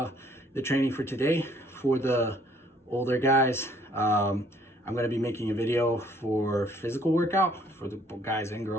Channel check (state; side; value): normal; both; correlation 0.61